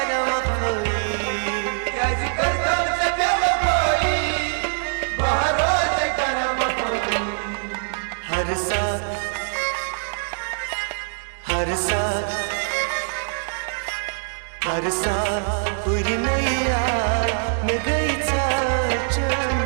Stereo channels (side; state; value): left; silent; digital silence